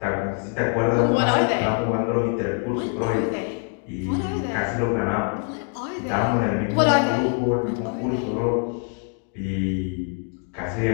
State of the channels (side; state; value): right; quieter; 39.2 dB